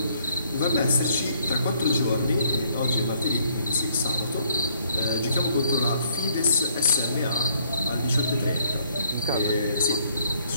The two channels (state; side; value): inverted; both; correlation -0.66